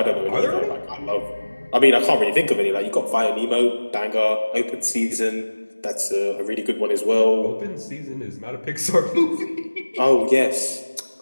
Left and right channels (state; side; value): inverted; both; correlation -1.00